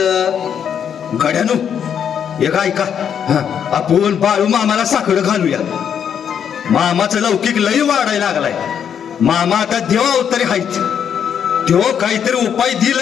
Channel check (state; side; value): quieter; right; 8.3 dB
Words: गड्यानो एक ऐका, आपण बाळू मामाला साखर घालूया. मामाचं लौकिक लई वाढायला लागलाय. मामा आता देवा अवतारी हायच. देव काहीतरी उपाय